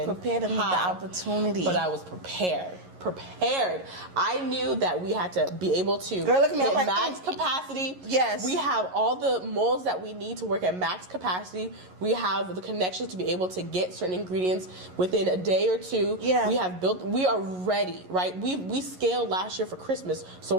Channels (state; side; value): late; left; 11 ms